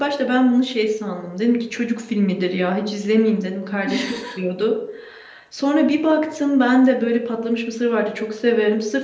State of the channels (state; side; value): identical; both; correlation 1.00